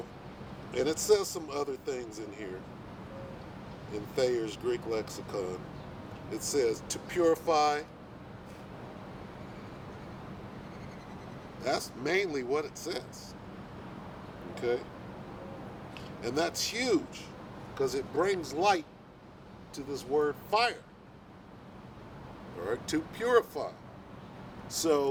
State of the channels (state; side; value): identical; both; correlation 1.00